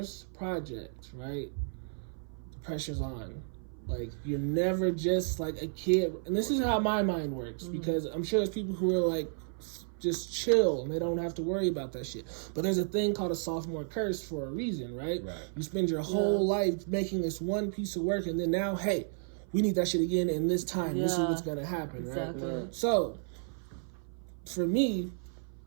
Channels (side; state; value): left; silent; 55 dB below the other